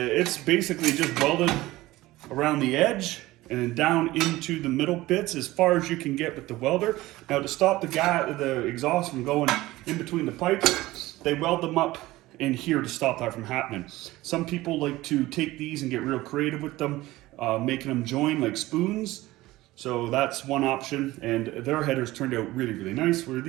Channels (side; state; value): left; quieter; 18.0 dB